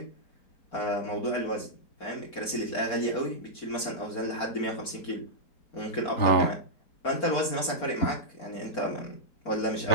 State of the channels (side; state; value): right; late; 4.4 ms